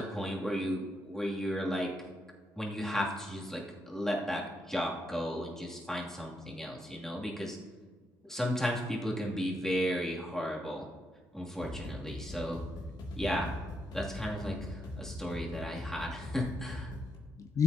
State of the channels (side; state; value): both; normal; correlation 0.80